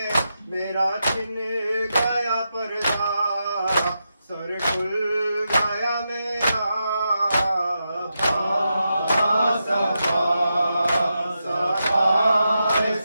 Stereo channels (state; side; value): inverted; both; correlation -0.87